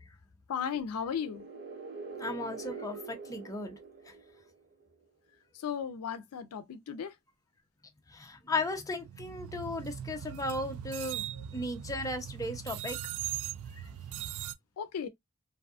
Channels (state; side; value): normal; both; correlation 0.19